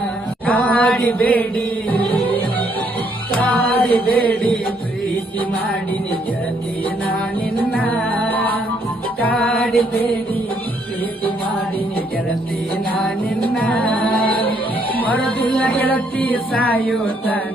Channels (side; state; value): both; normal; correlation 0.70